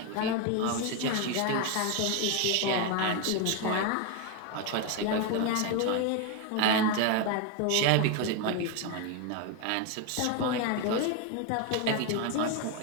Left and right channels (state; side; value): different; both; correlation 0.02